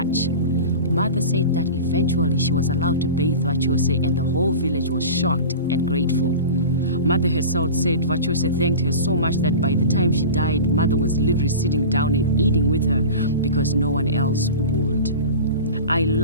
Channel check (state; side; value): inverted; both; correlation -0.32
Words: Mother said that eventually she was allowed to bathe Vachose and the whole village was shocked and grateful. Mother herself said Vachose thanked her so much that by the time she died, Mother was literally sitting down and eating with her because no one else would. I